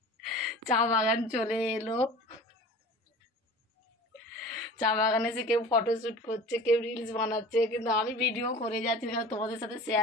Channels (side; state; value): both; normal; correlation 0.40